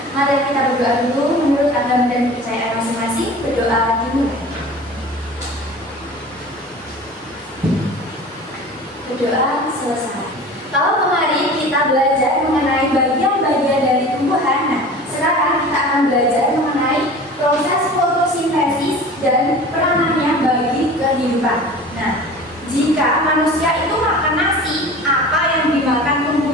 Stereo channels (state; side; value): normal; both; correlation 0.39